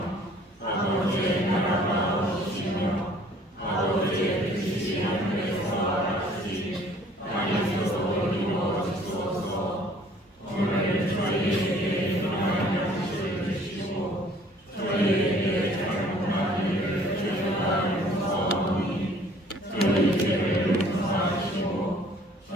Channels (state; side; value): normal; both; correlation 0.56